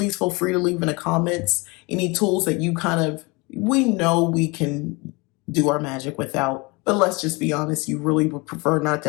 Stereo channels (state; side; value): quieter; right; 26.7 dB